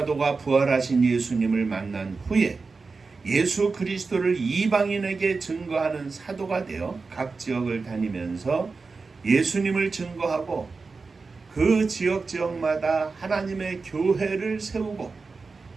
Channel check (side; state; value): left; quieter; 4.3 dB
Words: 부활하신 예수님을 만난 후에 예수 그리스도를 이방인에게 증거하는 사도가 되어 각 지역을 다니면서 예수님을 증거하고 그 지역마다 하나님의 교회를 세우고